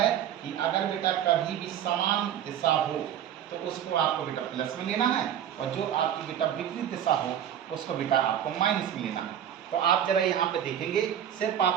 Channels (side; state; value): left; quieter; 10.0 dB